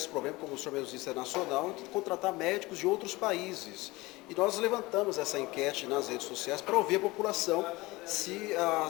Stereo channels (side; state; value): right; quieter; 21.5 dB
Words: problema, como o senhor mesmo disse, é nacional, de contratar médicos de outros países. E nós levantamos essa enquete nas redes sociais para ouvir a população se